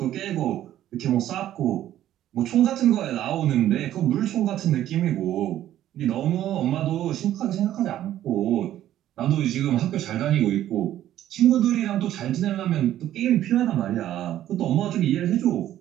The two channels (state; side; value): quieter; left; 12.4 dB